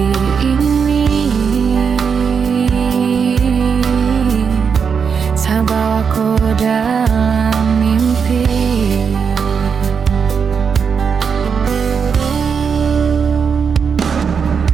ini tak bawa kau dalam mimpi.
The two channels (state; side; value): quieter; left; 6.3 dB